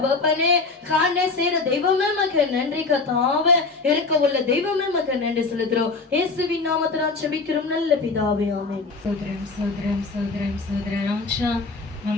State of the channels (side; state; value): right; quieter; 3.9 dB